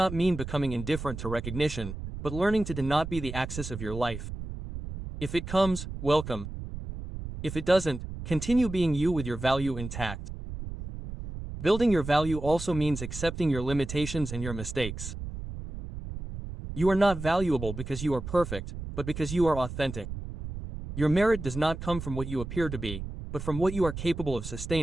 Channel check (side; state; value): right; noise; rumble, 8 dB below the sound